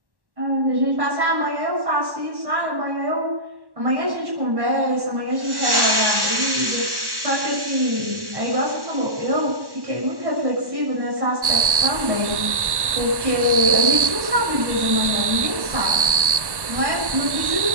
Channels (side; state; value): left; late; 1.1 ms